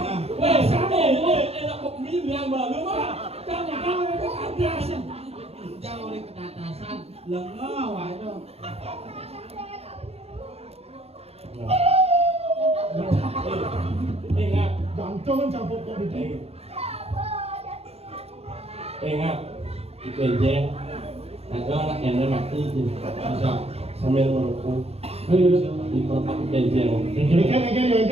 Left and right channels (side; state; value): left; late; 0.29 ms